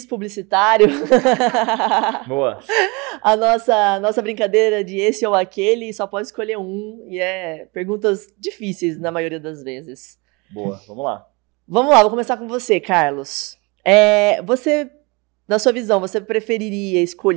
publicitário. Boa. A nossa brincadeira de esse ou aquele, só pode escolher um, e perguntas difíceis na maioria das vezes. Boa, vamos lá. Vamos lá, vou começar com você, Carlos. Na sua visão, você preferiria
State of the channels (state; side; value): quieter; left; 27.6 dB